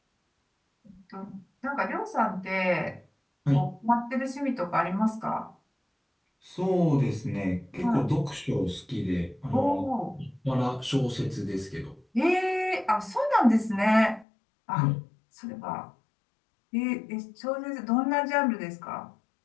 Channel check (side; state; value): right; drops out; at 14.2 s